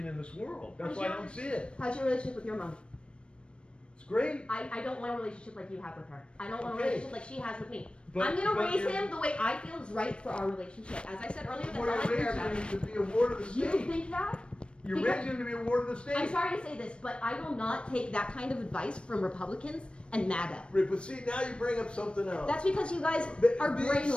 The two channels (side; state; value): right; late; 0.058 ms